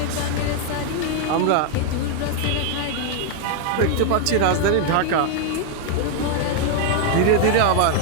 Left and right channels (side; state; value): both; different; correlation 0.00